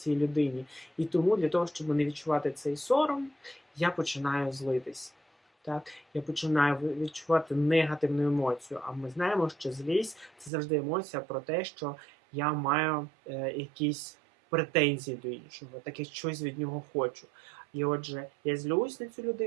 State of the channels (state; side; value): drops out; left; at 10.5 s